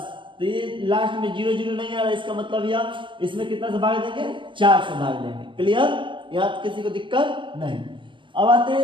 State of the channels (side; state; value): left; late; 0.24 ms